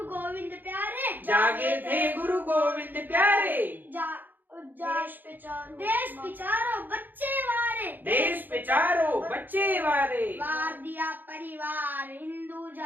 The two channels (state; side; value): late; left; 0.088 ms